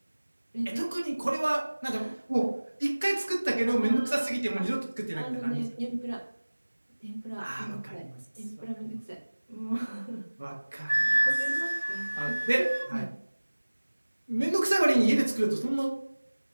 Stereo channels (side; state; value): both; inverted; correlation -1.00